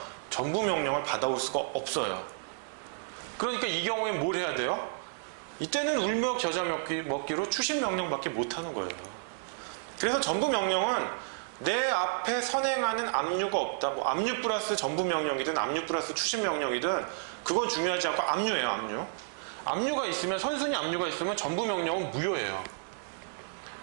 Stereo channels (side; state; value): left; silent; 57 dB below the other